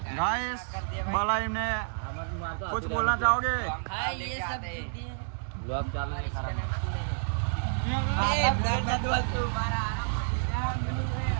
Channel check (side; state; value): left; silent; digital silence